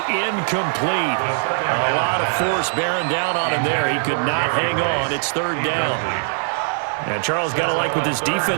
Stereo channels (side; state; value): left; silent; 56 dB below the other